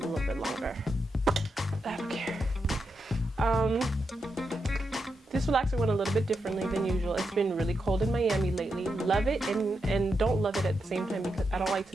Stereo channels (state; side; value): normal; both; correlation 0.85